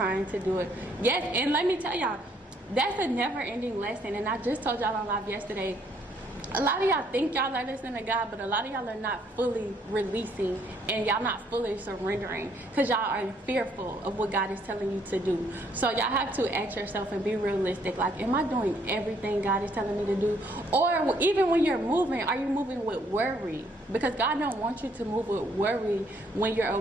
to do it. Yes, and let me tell y'all, that's a never-ending lesson. And I just told y'all on live yesterday, a lot of y'all think y'all are listening to God, but a lot of y'all are not fully releasing, and y'all not fully surrendering, because y'all are fearful of what God is telling you to do. So y'all have to ask yourself and be realistic. Like, am I doing everything God is telling me to do? Or even when you're moving, are you moving with worry? Because God don't want you to move with worry when you're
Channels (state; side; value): normal; both; correlation 0.67